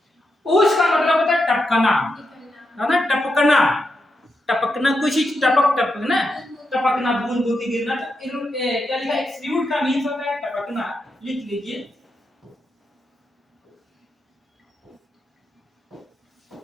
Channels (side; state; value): both; normal; correlation 0.85